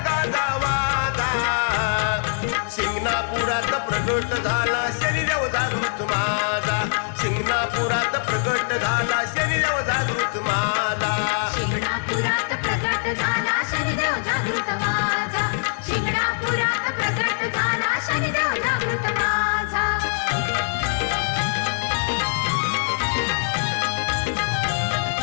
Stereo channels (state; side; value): silent; right; 63 dB below the other